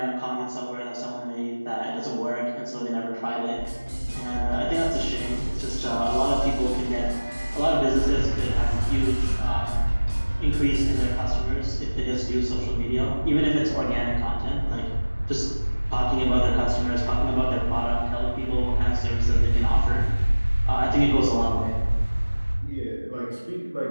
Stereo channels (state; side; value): inverted; both; correlation -1.00